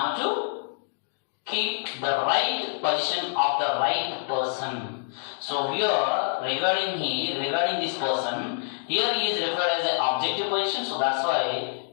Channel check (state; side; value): silent; right; digital silence